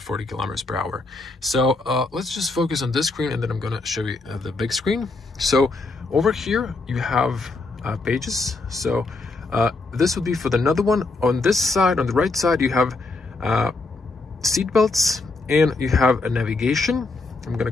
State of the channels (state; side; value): quieter; right; 3.4 dB